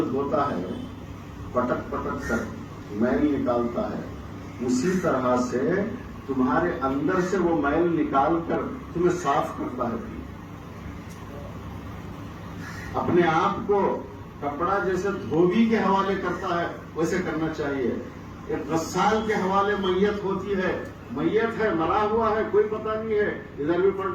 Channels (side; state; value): both; identical; correlation 1.00